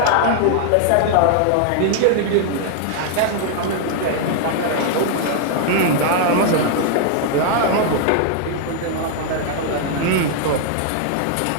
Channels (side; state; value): both; different; correlation 0.00